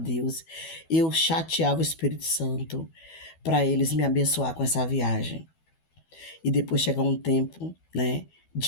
eu chateava o Espírito Santo para eles me abençoar com essa viagem. E depois chegar um tempo, né,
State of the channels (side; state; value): right; late; 12 ms